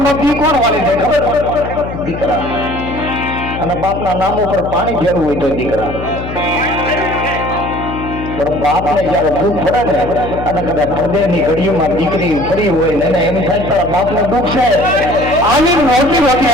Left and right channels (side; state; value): left; noise; hum, 8 dB below the sound